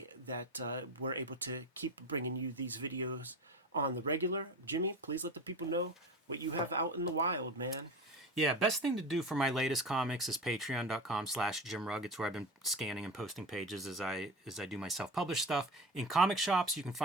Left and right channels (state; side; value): normal; both; correlation 0.28